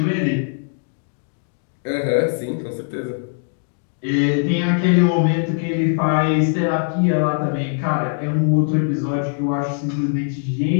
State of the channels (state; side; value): silent; right; digital silence